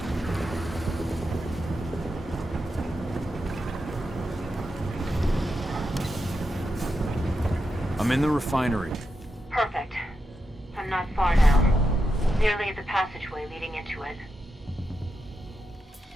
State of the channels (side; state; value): both; normal; correlation 0.87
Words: I'm in the refinery. Perfect. I'm not far now. Nearly at the passageway leading into it.